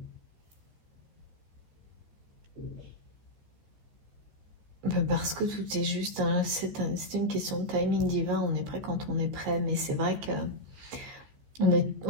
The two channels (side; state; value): left; late; 14 ms